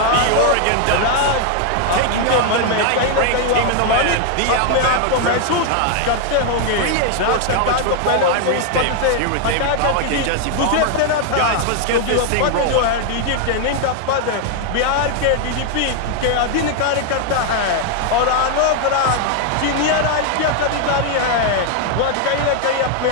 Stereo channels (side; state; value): both; different; correlation 0.00